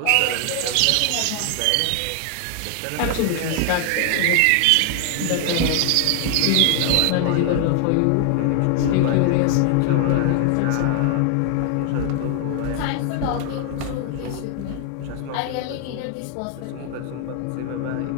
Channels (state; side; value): different; both; correlation 0.00